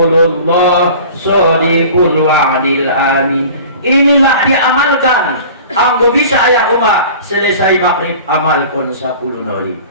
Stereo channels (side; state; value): both; inverted; correlation -0.42